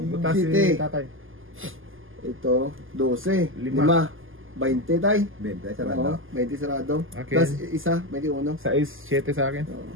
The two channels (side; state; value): left; late; 0.59 ms